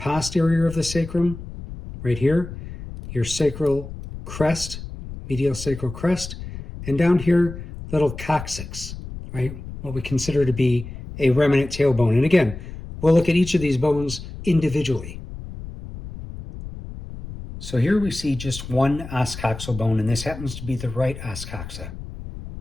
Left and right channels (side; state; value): left; noise; rumble, 11 dB below the sound